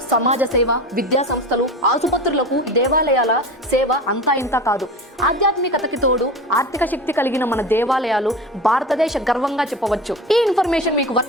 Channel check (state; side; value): normal; both; correlation 0.30